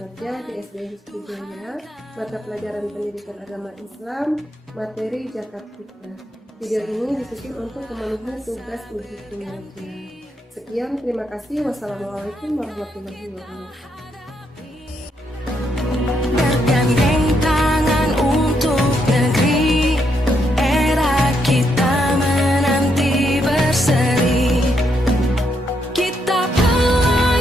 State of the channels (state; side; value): normal; both; correlation 0.78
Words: di SD Hizbul Jaya, mata pelajaran pendidikan agama Islam, materi Zakat Fitrah. Video ini disusun untuk memenuhi tugas uji kinerja. Sekian, terima kasih. Wassalamualaikum warahmatullahi wabarakatuh. Bergandeng tangan untuk negeri, era kita menanti berseri. Kita